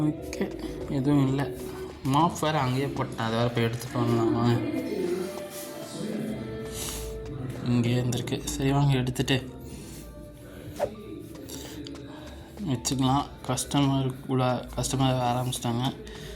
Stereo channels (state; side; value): identical; both; correlation 1.00